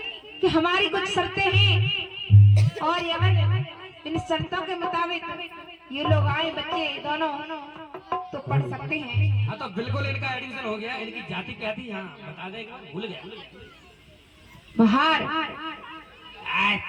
कि हमारी कुछ शर्तें हैं और इन शर्तों के मुताबिक ये लोग आए बच्चे दोनों तो पढ़ सकते हैं। हाँ तो बिल्कुल इनका एडमिशन हो गया। इनकी जाति क्या थी? हाँ बता देगा, भूल गया। बाहर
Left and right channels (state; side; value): identical; both; correlation 1.00